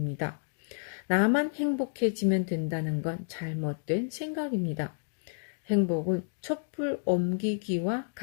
나만 행복해지면 된다는 건 잘못된 생각입니다. 행복은 촛불 옮기기와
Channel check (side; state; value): right; silent; digital silence